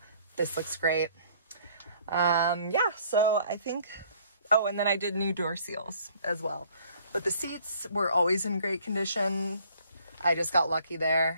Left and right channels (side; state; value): both; inverted; correlation -0.58